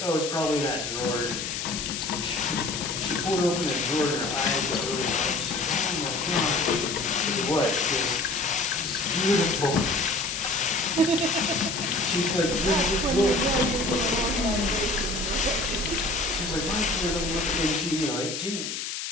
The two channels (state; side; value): noise; left; hiss, 5 dB below the sound